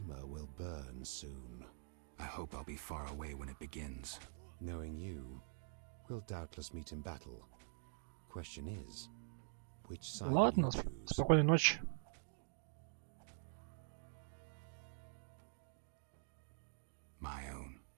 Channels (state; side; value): silent; left; digital silence